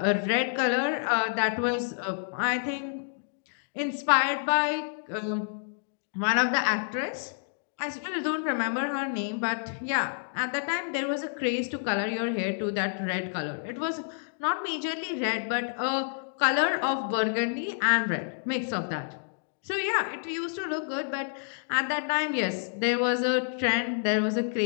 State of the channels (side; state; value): right; silent; digital silence